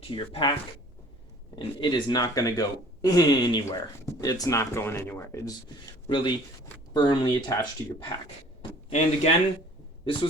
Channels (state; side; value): normal; both; correlation 0.51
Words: to your pack, and it is not going to go anywhere. It's not going anywhere. It's really firmly attached to your pack. And again, this